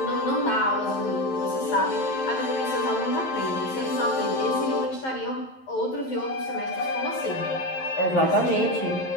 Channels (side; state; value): right; late; 11 ms